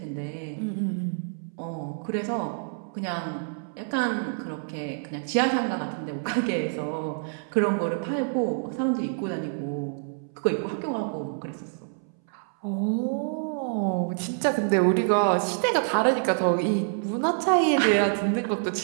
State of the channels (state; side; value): silent; left; 60 dB below the other